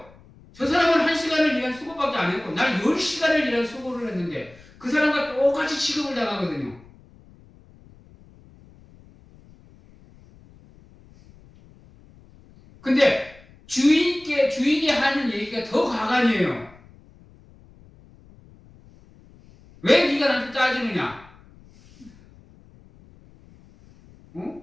저 사람은 1시간을 일한 수고밖에 안 했고 나는 10시간을 일한 수고를 했는데 그 사람과 똑같이 취급을 당하거든요. 근데 주인이 하는 얘기가 더 가관이에요. 왜 네가 나한테 따지느냐?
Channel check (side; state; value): left; noise; rumble, 25 dB below the sound